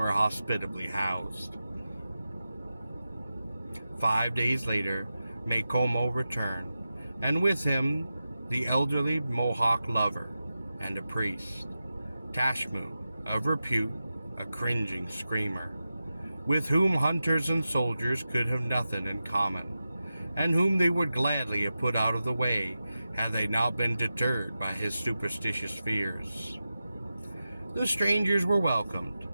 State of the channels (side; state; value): both; inverted; correlation -0.92